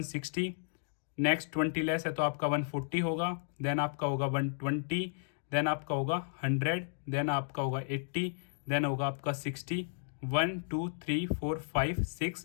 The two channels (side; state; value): right; silent; digital silence